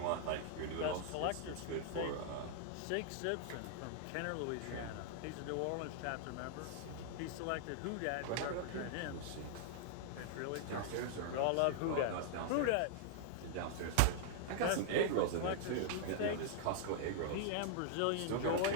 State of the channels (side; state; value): both; different; correlation -0.01